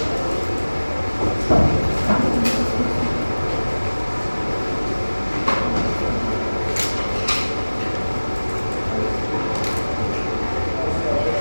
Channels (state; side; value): inverted; both; correlation -1.00